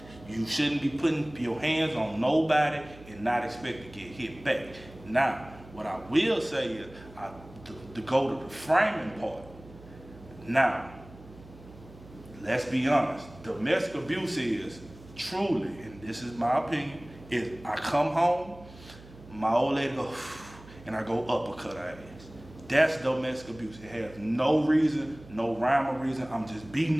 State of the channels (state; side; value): noise; right; hum, 20 dB below the sound